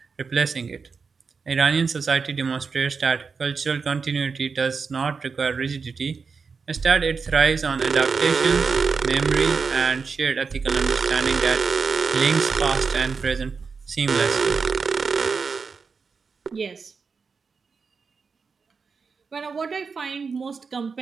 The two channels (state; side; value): quieter; left; 5.2 dB